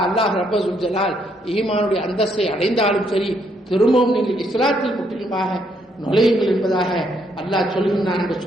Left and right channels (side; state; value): both; normal; correlation 0.73